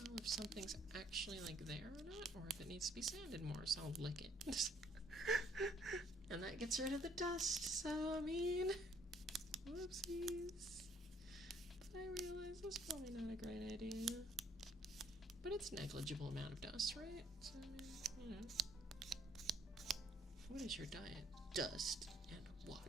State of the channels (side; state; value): both; normal; correlation 0.64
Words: if something's actually like there or not, or if it needs to be sanded more, so I'll lick it. And that gets rid of the dust, so I mean, whoopsies. But I realize that's probably not a great idea. But it's a negligible amount of dust, right? So I mean, you know. What is your diet? Dust and